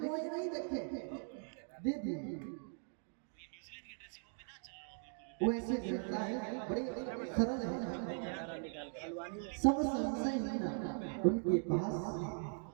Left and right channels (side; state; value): left; silent; 51 dB below the other